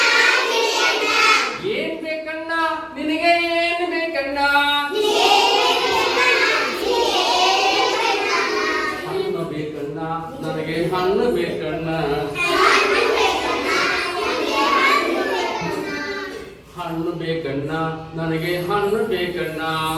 ಏನ್ ಬೇಕಣ್ಣ ನಿನಗೆ ಏನ್ ಬೇಕಣ್ಣ ಹಣ್ಣು ಬೇಕಣ್ಣ ನನಗೆ ಹಣ್ಣು ಬೇಕಣ್ಣ ಹಣ್ಣು ಬೇಕಣ್ಣ ನನಗೆ ಹಣ್ಣು ಬೇಕಣ್ಣ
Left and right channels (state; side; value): identical; both; correlation 1.00